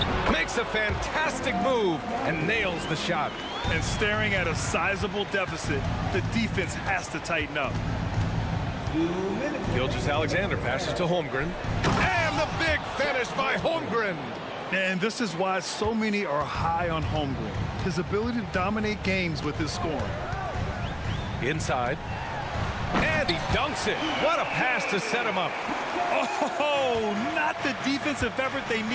makes a fantastic move, and nails the shot. And staring at a sizable deficit, the defense has to tighten up. Gilgeous-Alexander passes to Holmgren. And the big finish by Holmgren. And this is why so many are high on Holmgren. His ability to dominate games with his scoring. Inside. And he dunks it. What a pass to set him up. Oh, not the defensive effort they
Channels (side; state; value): both; identical; correlation 1.00